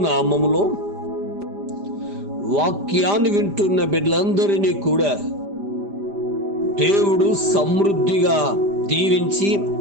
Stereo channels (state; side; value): late; left; 5.0 ms